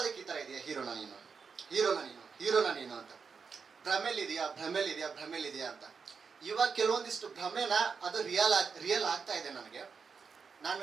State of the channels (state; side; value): quieter; left; 5.6 dB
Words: ಈ ತರ ಇದೆಯಾ ಹೀರೋನ ನೀನು ಅಂತ, ಭ್ರಮೇಲಿದೆಯಾ ಅಂತ. ಇವಾಗ ಕೆಲವೊಂದಿಷ್ಟು ಭ್ರಮೆನ ಅದು ರಿಯಲ್ ಆಗ್ತಾ ಇದೆ ನನಗೆ.